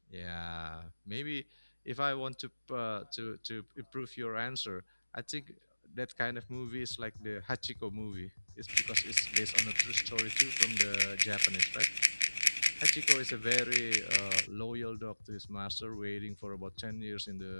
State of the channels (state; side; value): inverted; both; correlation -1.00